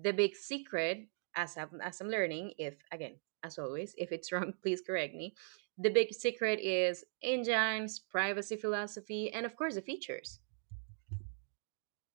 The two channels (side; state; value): left; silent; digital silence